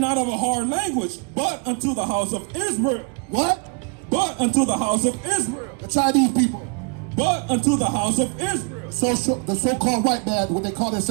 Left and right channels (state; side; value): quieter; left; 33.5 dB